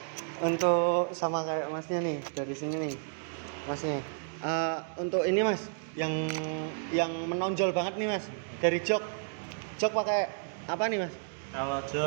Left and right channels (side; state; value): left; silent; digital silence